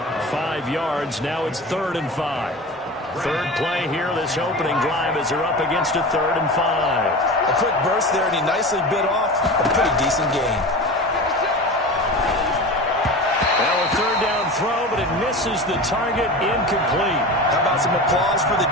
5 yards, now it's 3rd and 5. Third play here, this opening drive as they're up against a 3rd and 5. A quick burst there, and he nicely bit off a pretty decent gain. Now a 3rd down throw, but it misses the target, incomplete. How about some applause for the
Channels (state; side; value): normal; both; correlation 0.31